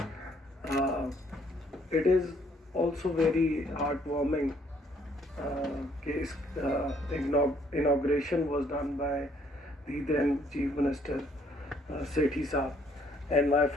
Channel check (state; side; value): normal; both; correlation 0.65